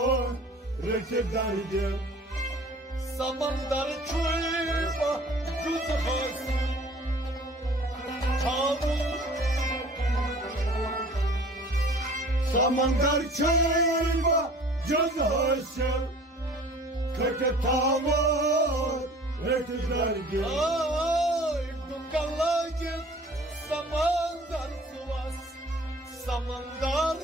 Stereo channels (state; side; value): normal; both; correlation 0.48